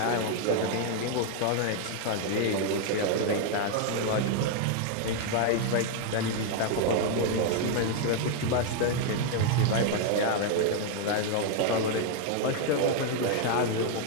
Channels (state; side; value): different; both; correlation 0.01